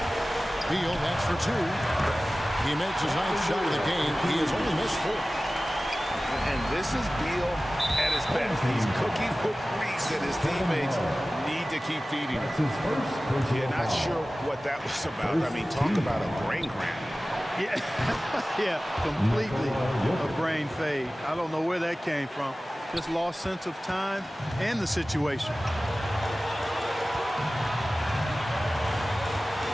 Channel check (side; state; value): both; normal; correlation 0.97